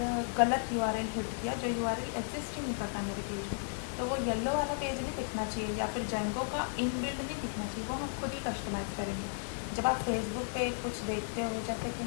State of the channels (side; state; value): right; silent; 55 dB below the other